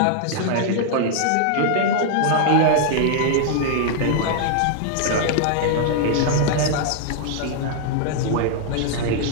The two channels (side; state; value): both; different; correlation 0.00